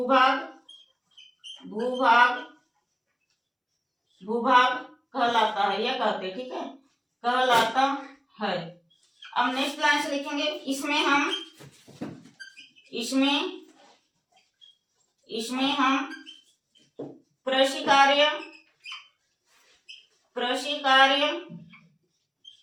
कहलाता है, यह कहते हैं, ठीक है? कहलाता है। अब नेक्स्ट लाइन से लिखेंगे। इसमें हम कृषि कार्य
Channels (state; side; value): identical; both; correlation 1.00